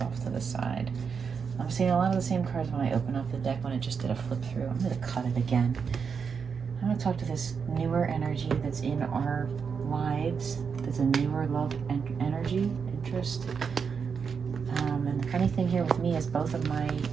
off to the side. I'm seeing a lot of the same cards when I open up the deck when it just did a flip through. I'm going to cut it again. I'm going to talk to this newer energy that's in our lives. That's a newer love energy, interest. And the funny thing here with me is both of my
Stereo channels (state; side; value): quieter; left; 6.1 dB